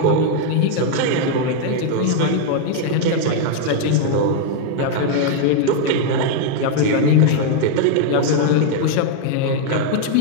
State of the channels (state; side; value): different; both; correlation 0.00